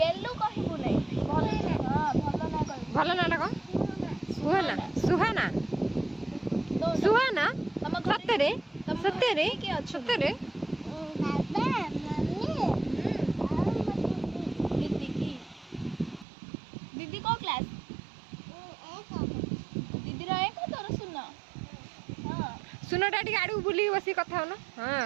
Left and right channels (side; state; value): left; drops out; at 16.2 s